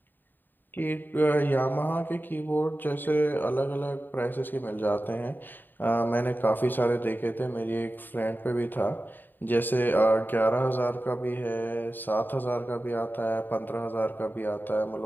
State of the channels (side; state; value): right; late; 0.091 ms